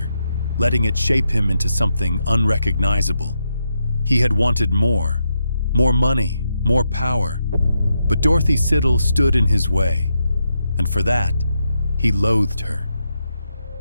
letting it shape him into something unrecognizable. He had wanted more money, more power. But Dorothy Siddle stood in his way, and for that, he loathed her.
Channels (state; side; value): inverted; both; correlation -0.83